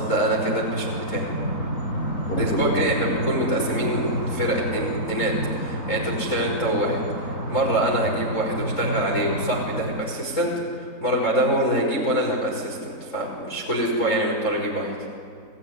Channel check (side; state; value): right; late; 3.7 ms